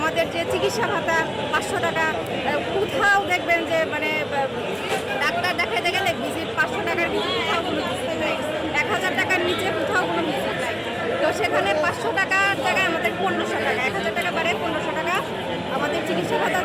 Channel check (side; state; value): both; identical; correlation 1.00